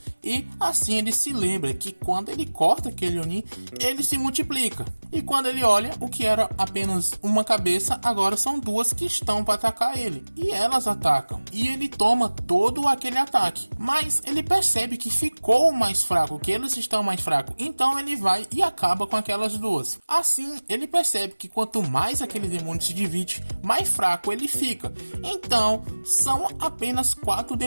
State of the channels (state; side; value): inverted; both; correlation -1.00